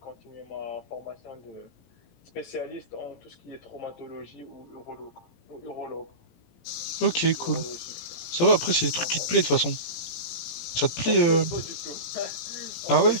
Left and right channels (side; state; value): right; late; 17 ms